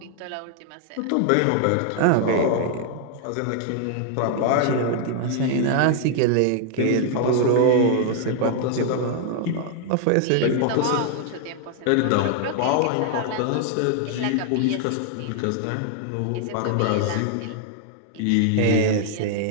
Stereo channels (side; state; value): both; different; correlation 0.00